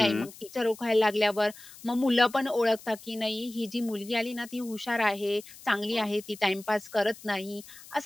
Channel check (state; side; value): noise; left; hiss, 19 dB below the sound